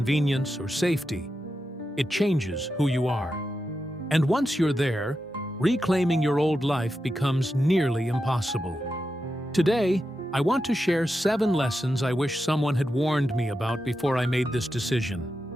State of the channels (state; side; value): normal; both; correlation 0.89